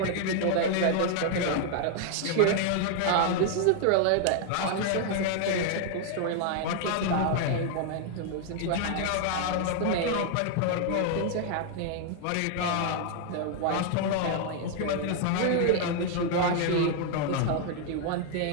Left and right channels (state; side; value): different; both; correlation 0.00